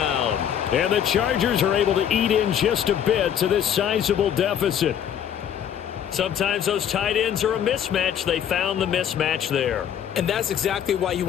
And the Chargers are able to eat in just a bit to this sizable deficit. Sometimes those tight ends are a mismatch. They found the mismatch there. And that's exactly why you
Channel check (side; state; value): right; quieter; 9.2 dB